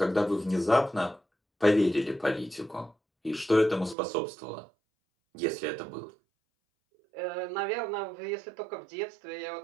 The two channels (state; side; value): drops out; left; at 4.0 s